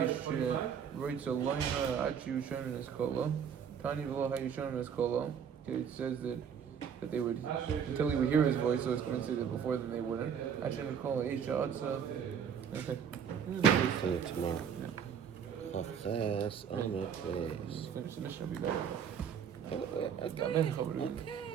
writes a line Achi Sherman is called. Tani v'lo hayu Sherman is called. It says that they would until he would hear his voice, so it's going to say that before then they wouldn't. Achi would call Aisha Atza. Okay. See you tomorrow. Finish the mission will be better. I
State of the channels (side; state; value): left; quieter; 7.6 dB